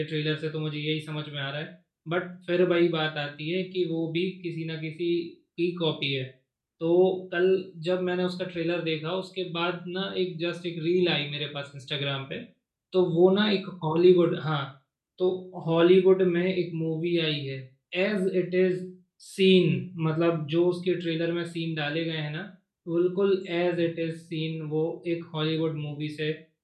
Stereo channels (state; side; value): identical; both; correlation 1.00